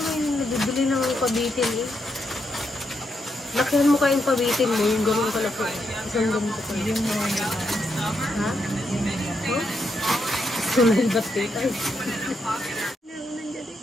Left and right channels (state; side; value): normal; both; correlation 0.81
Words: may nabibili ng pabitin eh. Lakihan mo kayong pabitin mo, yung gano'n kalaki. Isang ganito ko. Yung mga ha? Sunay ba't tayo?